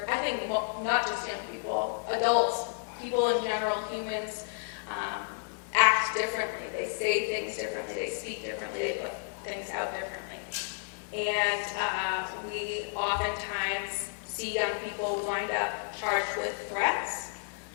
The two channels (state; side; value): silent; right; digital silence